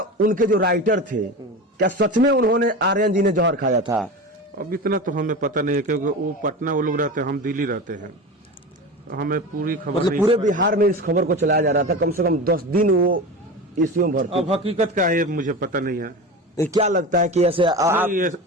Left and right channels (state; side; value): normal; both; correlation 0.28